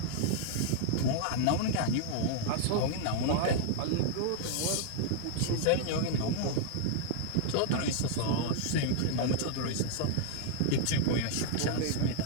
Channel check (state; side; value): different; both; correlation -0.01